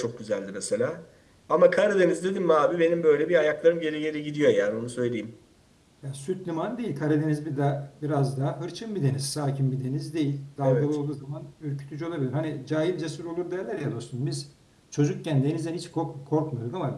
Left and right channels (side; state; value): both; identical; correlation 1.00